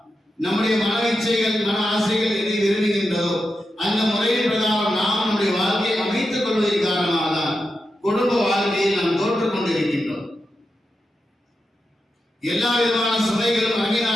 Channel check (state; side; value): normal; both; correlation 0.89